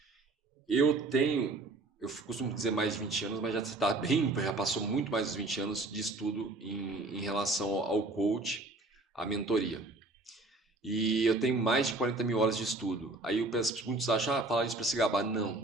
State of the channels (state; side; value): quieter; left; 3.1 dB